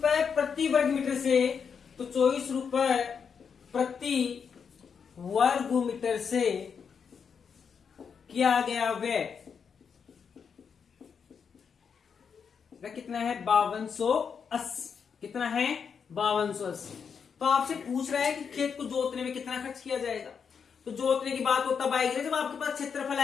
प्रति वर्ग मीटर से, तो 24 रुपए प्रति वर्ग मीटर से किया गया व्यय कितना है 5280। कितना है 5280। तो आपसे पूछ रहा है कि खेत को जोतने में कितना खर्च किया जाएगा। तो जोतने की बात वो तब आएगी जब आपके पास क्षेत्रफल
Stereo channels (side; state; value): right; quieter; 6.5 dB